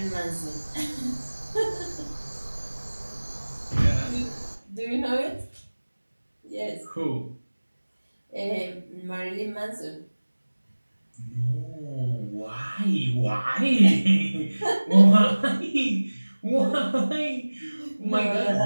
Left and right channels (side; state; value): both; inverted; correlation -1.00